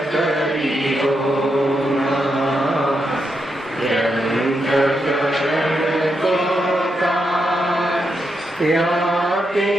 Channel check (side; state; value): both; normal; correlation 0.83